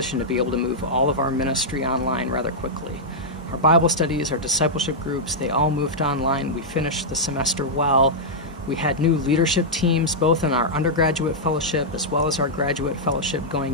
to be able to move all of our ministry online rather quickly. Our Bible studies, our discipleship groups, they all moved online. We finished the semester well. We had new leadership teams, both in our undergraduate fellowship as well as our graduate fellowship going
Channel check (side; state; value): both; normal; correlation -0.08